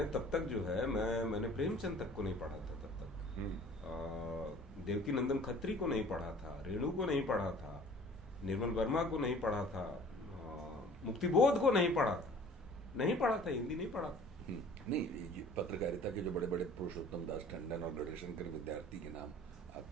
तब तक जो है मैंने प्रेमचंद तक को नहीं पढ़ा था तब तक। देवकी नंदन खत्री को नहीं पढ़ा था, रेणु को नहीं पढ़ा था, निर्मल वर्मा को नहीं पढ़ा था, मुक्तिबोध को नहीं पढ़ा था, हिंदी नहीं पढ़ा था। नहीं, ये पत्रकारिता के जो बड़े बड़े पुरुषोत्तम दास टंडन और गढ़शंकर विद्यार्थी के नाम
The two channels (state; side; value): normal; both; correlation 0.49